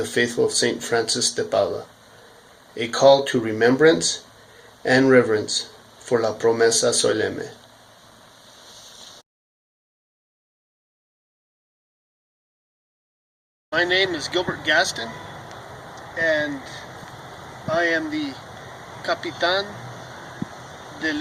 faithful of St. Francis de Paula, a call to remembrance and reverence for la promesa solemne. My name is Gilbert Gaston, and I am the Capitan de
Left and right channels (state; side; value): identical; both; correlation 1.00